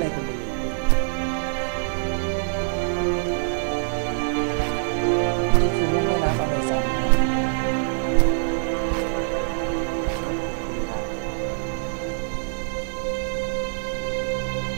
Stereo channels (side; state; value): left; silent; 62 dB below the other